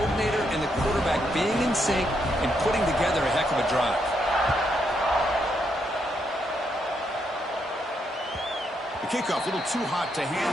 and the quarterback being in sync and putting together a heck of a drive. The kickoff, a little too hot to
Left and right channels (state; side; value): normal; both; correlation 0.78